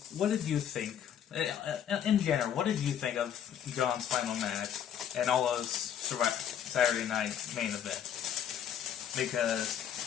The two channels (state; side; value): quieter; right; 9.3 dB